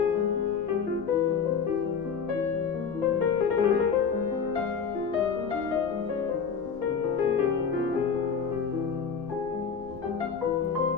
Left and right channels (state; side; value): quieter; right; 6.3 dB